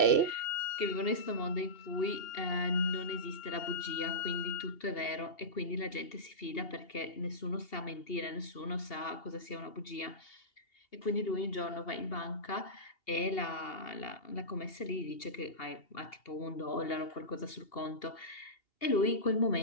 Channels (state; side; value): late; right; 2.8 ms